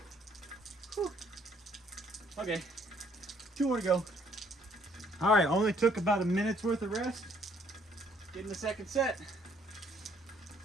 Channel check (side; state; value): both; normal; correlation 0.64